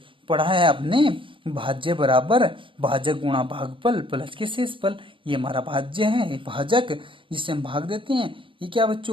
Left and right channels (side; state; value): left; late; 0.25 ms